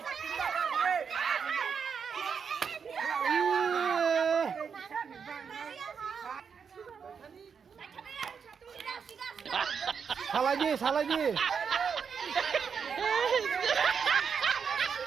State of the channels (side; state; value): left; quieter; 6.4 dB